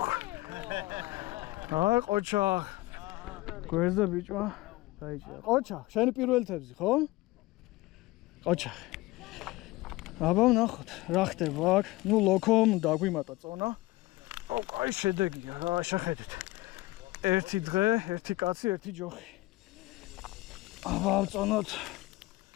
აი ყოჩა. გვერდზე ბიჭმა დაიჭირა. ყოჩა, შენი პირველი თევზი, ხო? ყოჩა. აბა ვნახოთ, რა ხდება აქ. ნუ ლოქომ დაგვიმატა წონა. აუ, კაი შედეგია რა, შეხედეთ. ერთი დღე, ერთი კაცი, ერთი ჯოხი. აბა ავწონოთ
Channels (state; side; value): quieter; right; 19.5 dB